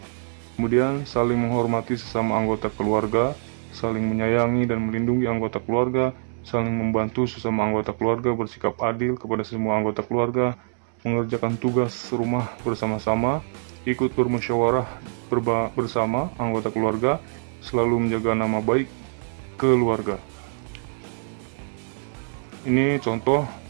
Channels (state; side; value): silent; left; digital silence